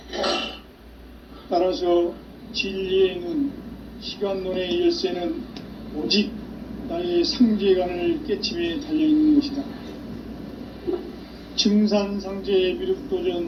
따라서 진리의 눈, 시간론의 열쇠는 오직 나의 상제관을 깨침에 달려있는 것이다. 증산상제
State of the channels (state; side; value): identical; both; correlation 1.00